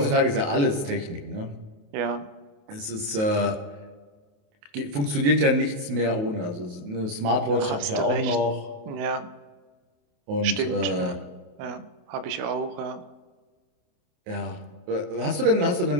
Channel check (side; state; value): left; late; 28 ms